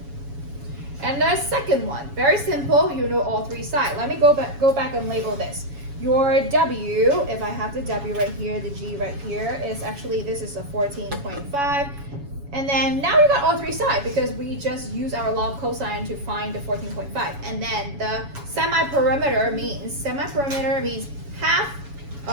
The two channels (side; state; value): left; late; 7.1 ms